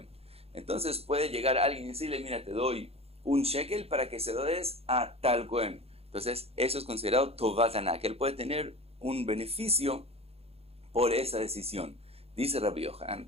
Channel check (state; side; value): late; left; 0.29 ms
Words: Entonces puede llegar alguien y decirle, mira, te doy un shekel para que se lo des a tal Cohen. Entonces, eso es considerado Tovat Haná, que él puede tener un beneficio por esa decisión. Dice Rabbi Yohanan,